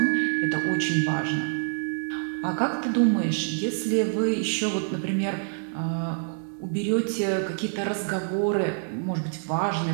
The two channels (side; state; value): left; silent; digital silence